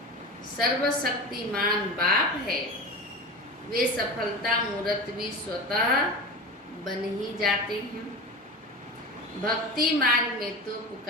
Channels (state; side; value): normal; both; correlation 0.28